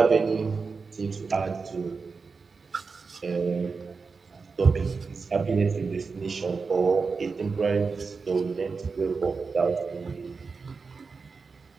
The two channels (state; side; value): quieter; left; 4.7 dB